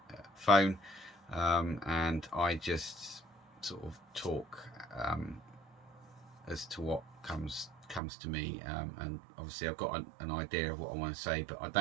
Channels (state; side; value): drops out; left; at 8.0 s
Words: phone, and I just sort of talk as to what comes to me, and obviously I've got an idea of what I want to say, but I